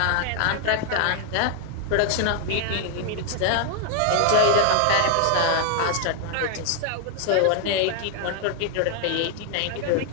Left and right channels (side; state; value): both; different; correlation 0.00